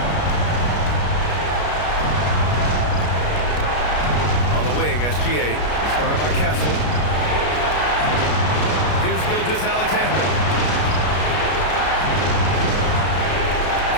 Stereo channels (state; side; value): late; right; 33 ms